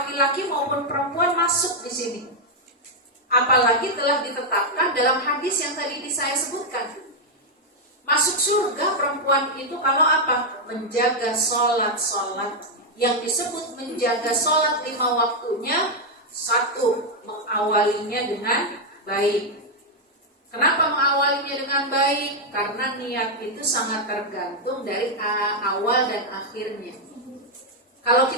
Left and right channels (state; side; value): normal; both; correlation 0.00